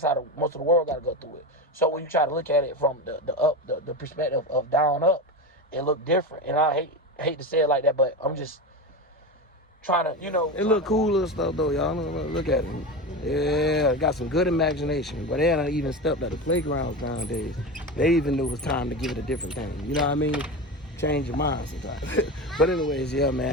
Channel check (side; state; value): both; normal; correlation 0.23